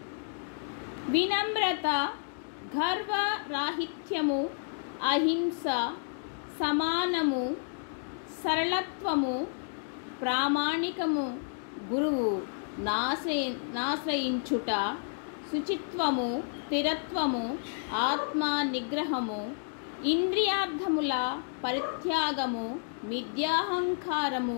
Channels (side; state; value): right; silent; digital silence